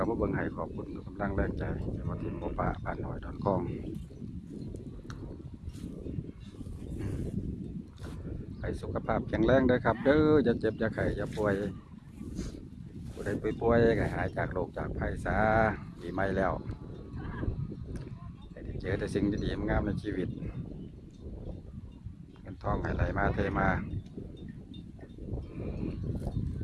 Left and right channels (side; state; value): both; identical; correlation 1.00